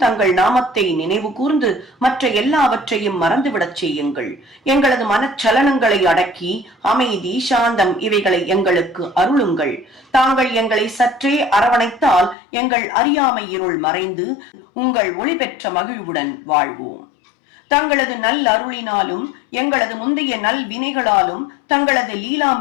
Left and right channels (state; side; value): drops out; right; at 12.4 s